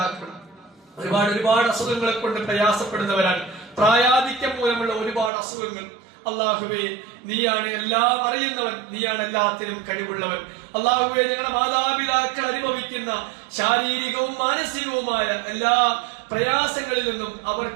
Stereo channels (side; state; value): left; drops out; at 5.3 s